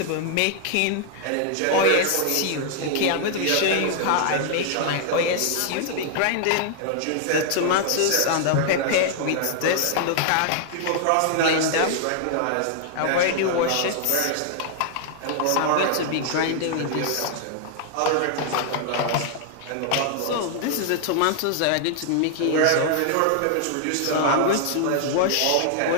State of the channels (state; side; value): different; both; correlation 0.00